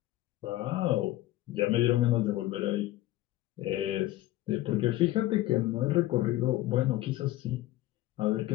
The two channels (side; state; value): right; quieter; 15.9 dB